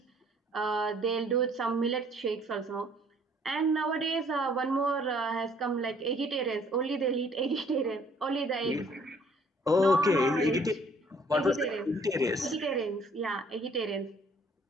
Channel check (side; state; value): both; normal; correlation 0.60